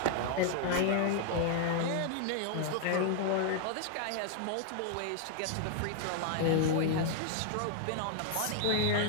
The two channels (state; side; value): different; both; correlation 0.00